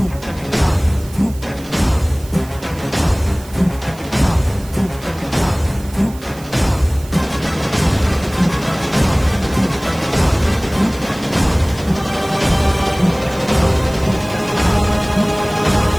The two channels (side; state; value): right; noise; hiss, 20 dB below the sound